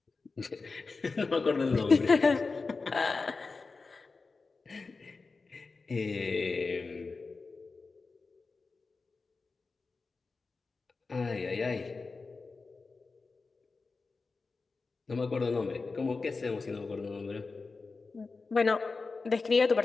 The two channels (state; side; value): quieter; right; 4.1 dB